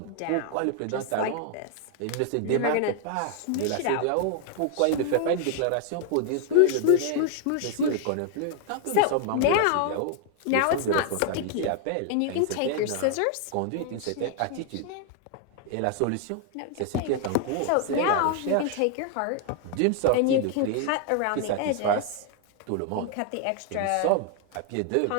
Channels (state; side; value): different; both; correlation 0.00